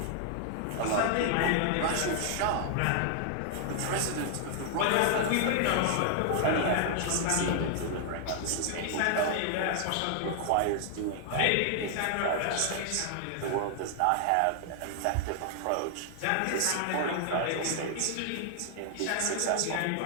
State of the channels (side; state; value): both; different; correlation 0.00